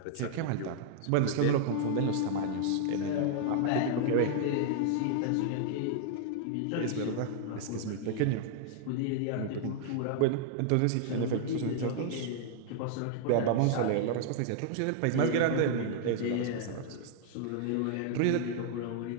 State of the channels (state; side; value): different; both; correlation -0.01